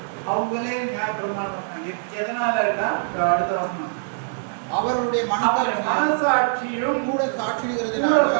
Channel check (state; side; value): silent; left; digital silence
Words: அவங்களே நியாயப்பிரமாணம். எதனால அடுத்த வசனம், அவருடைய மனசாட்சியும் கூட